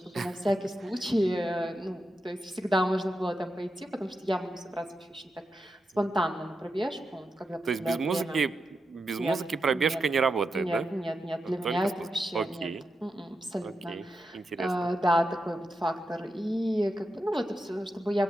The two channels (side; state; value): both; normal; correlation 0.87